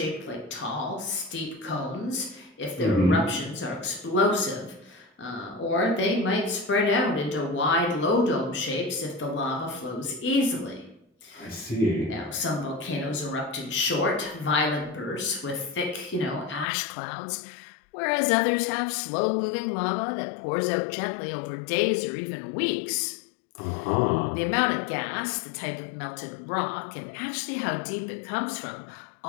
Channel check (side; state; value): right; drops out; at 16.7 s